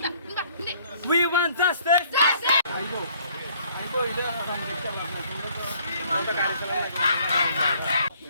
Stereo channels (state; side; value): inverted; both; correlation -0.60